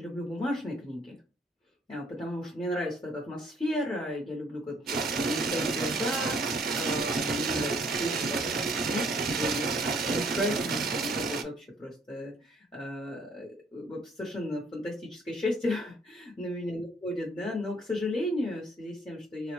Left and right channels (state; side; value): normal; both; correlation 0.62